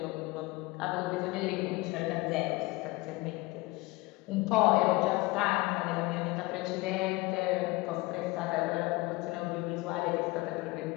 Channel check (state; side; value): quieter; right; 22.1 dB